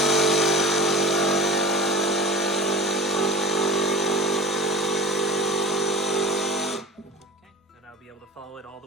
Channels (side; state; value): both; normal; correlation 0.35